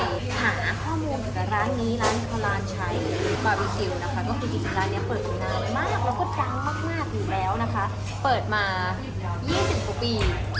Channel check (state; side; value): identical; both; correlation 1.00